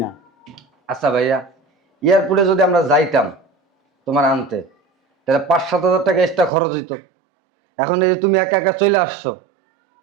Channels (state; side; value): drops out; left; at 6.5 s